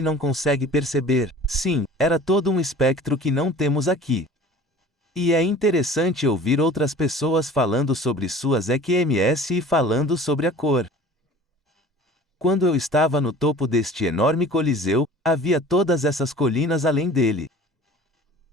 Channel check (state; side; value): normal; both; correlation 0.44